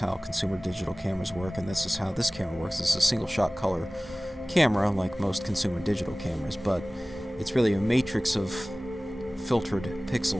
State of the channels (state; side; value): normal; both; correlation 0.98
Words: consumer digital cameras work, and this is how this camera works. This is a single shot color camera like most consumer digital cameras, but it's really a matrix of filtered